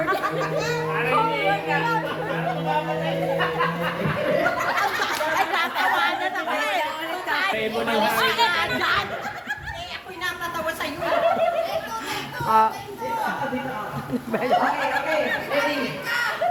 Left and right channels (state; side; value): identical; both; correlation 1.00